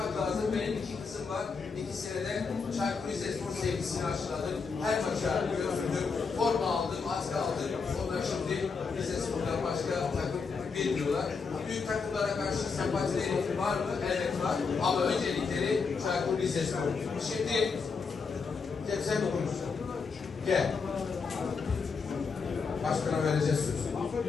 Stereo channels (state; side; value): quieter; right; 5.1 dB